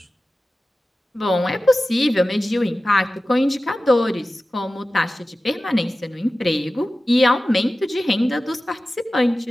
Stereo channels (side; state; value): both; normal; correlation 0.95